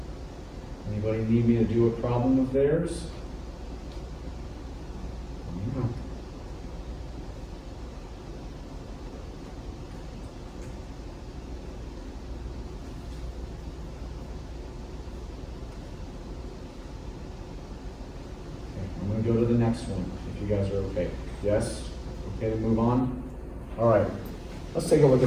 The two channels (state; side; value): identical; both; correlation 1.00